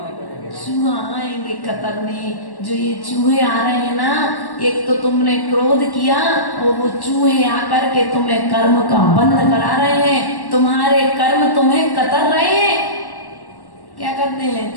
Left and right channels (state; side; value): late; right; 1.1 ms